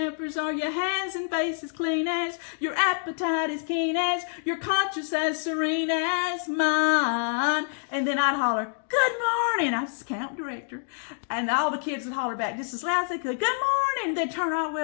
Are your hands and faces clean as? Your appetite as keen as? Your conscience as serene as mine? And then I'd holler, good morning. I was the camp director. And all the kids would holler back just as loud as they could, good morning. They'd turn all the way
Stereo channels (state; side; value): silent; right; digital silence